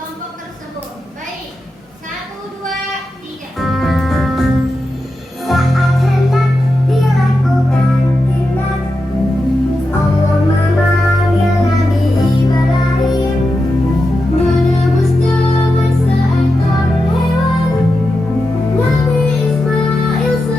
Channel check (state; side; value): normal; both; correlation 0.89